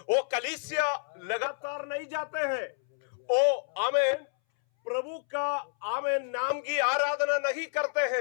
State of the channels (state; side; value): silent; right; 58 dB below the other